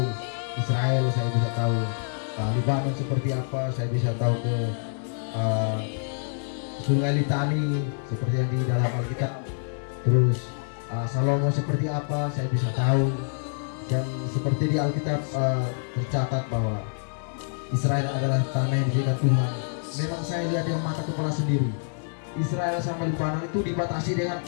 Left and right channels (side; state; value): right; silent; 61 dB below the other